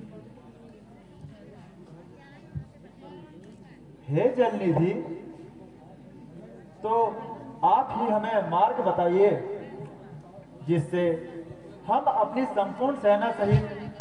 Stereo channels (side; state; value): both; identical; correlation 1.00